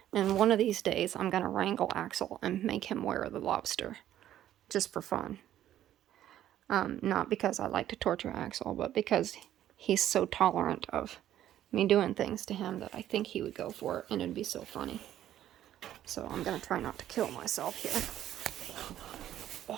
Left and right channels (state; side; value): quieter; left; 12.0 dB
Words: And one of these days, I'm gonna wrangle Axel and make him wear the lobster, just for fun. Not because I like to torture Axel, but because he's so tolerant of me doing things to him that I think he would go for it, and it'd be so funny. So I'm gonna try not to kill myself here.